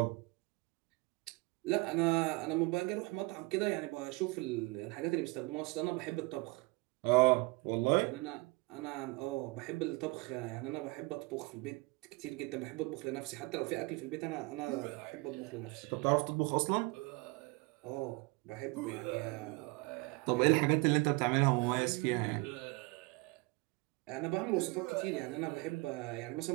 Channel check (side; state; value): left; quieter; 25.3 dB